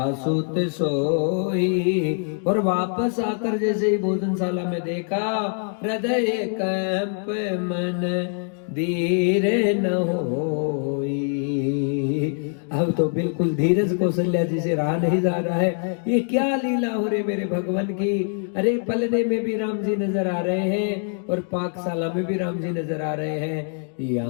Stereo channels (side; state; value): right; silent; 55 dB below the other